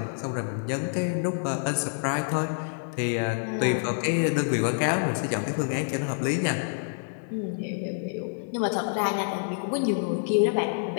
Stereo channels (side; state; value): right; silent; 60 dB below the other